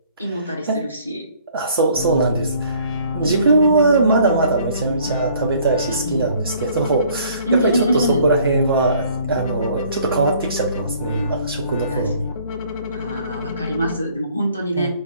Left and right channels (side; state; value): both; inverted; correlation -0.59